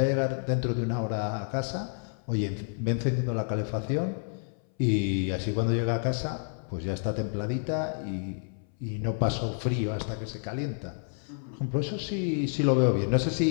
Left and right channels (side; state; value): right; silent; 58 dB below the other